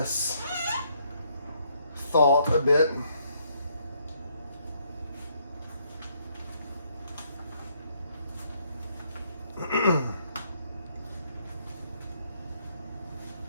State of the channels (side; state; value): both; inverted; correlation -0.71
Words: thought a bit.